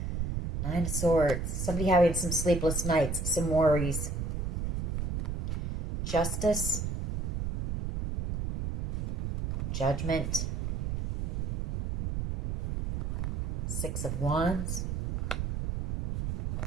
Nine of Swords. Somebody having some sleepless nights, some worries. Justice. Judgment. Six of Wands.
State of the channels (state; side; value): noise; right; rumble, 2 dB below the sound